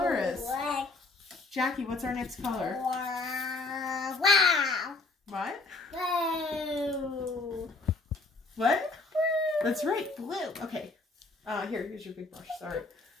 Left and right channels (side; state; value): right; quieter; 3.4 dB